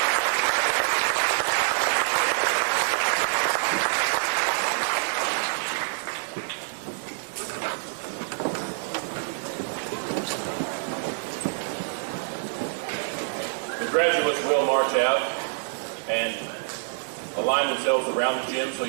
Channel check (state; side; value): silent; left; digital silence